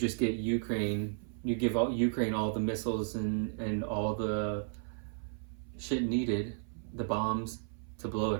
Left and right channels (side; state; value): left; silent; 55 dB below the other